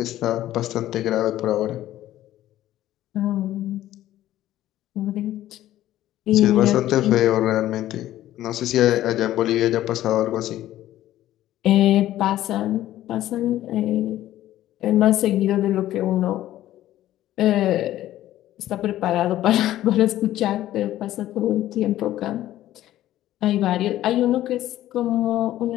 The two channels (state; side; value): quieter; right; 13.8 dB